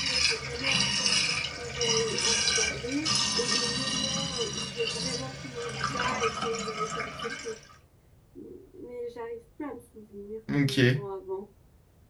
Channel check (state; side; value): identical; both; correlation 1.00